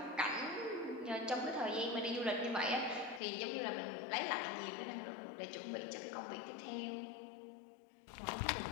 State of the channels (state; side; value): drops out; right; at 3.2 s